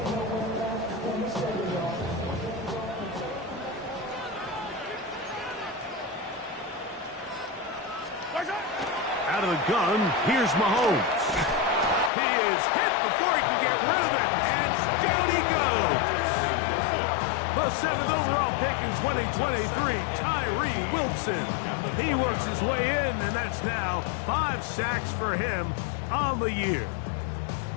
Out of the gun, here's Mahomes. He is hit before he can get rid of it, and down he goes. The 7th overall pick in 2023, Tyree Wilson. He works his way in, and that's now 5 sacks for him on the year.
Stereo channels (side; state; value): right; drops out; at 12.1 s